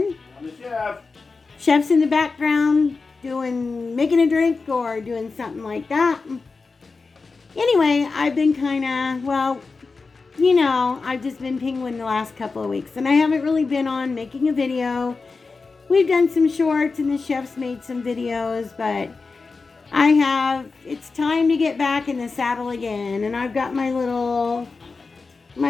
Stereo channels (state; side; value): quieter; right; 4.2 dB